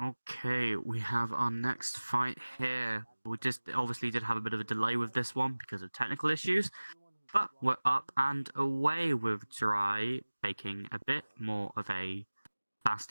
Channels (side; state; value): both; inverted; correlation -1.00